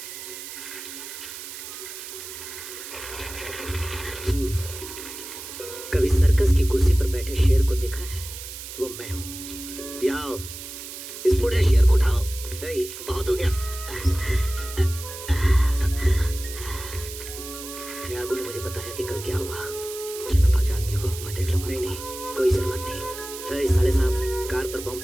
कभी सर्कस की कुर्सी पर बैठे शेर को देखा है? वो मैं हूँ। आओ, इस बूढ़े शेर को उठाओ। हे, बहुत हो गया। त्यागू ने मुझे बताया कि कल क्या हुआ। जनपा के आदमियों को मैं देख लूंगा। नहीं नहीं, कोई जरूरत नहीं। हे, साले साहब, कार पर बम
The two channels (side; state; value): right; noise; hiss, 11 dB below the sound